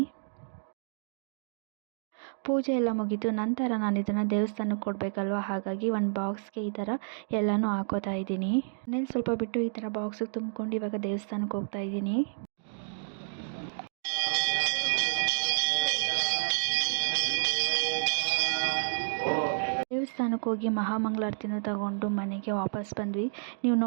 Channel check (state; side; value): silent; left; digital silence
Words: ಪೂಜೆ ಎಲ್ಲ ಮುಗೀತು. ನಂತರ ನಾನು ಇದನ್ನು ದೇವಸ್ಥಾನಕ್ಕೆ ಕೊಡಬೇಕಲ್ವ, ಹಾಗಾಗಿ ಒಂದು ಬಾಕ್ಸ್ಗೆ ಈ ಥರ ಎಲ್ಲನೂ ಹಾಕೋತಾ ಇದ್ದೀನಿ. ಮನೇಲಿ ಸ್ವಲ್ಪ ಬಿಟ್ಟು ಈ ಥರ ಬಾಕ್ಸಿಗೆ ತುಂಬ್ಕೊಂಡು ಇವಾಗ ದೇವಸ್ಥಾನಕ್ಕೆ ಹೋಗ್ತಾ ಇದ್ದೀನಿ. ದೇವಸ್ಥಾನಕ್ಕೆ ಹೋಗಿ ಮಹಾಮಂಗಳಾರತಿನ ತಗೊಂಡು ಮನೆಗೆ ವಾಪಸ್ ಬಂದ್ವಿ. ನೀವು